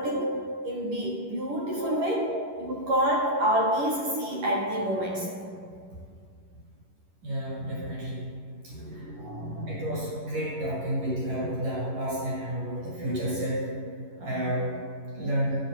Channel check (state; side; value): late; left; 11 ms